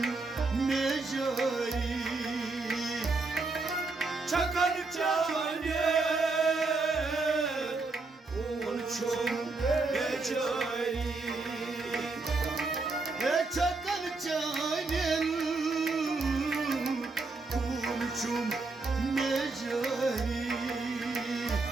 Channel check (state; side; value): quieter; left; 3.7 dB